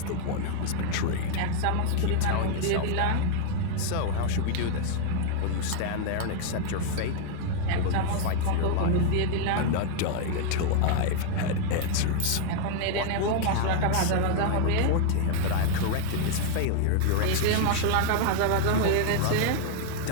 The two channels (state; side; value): different; both; correlation 0.00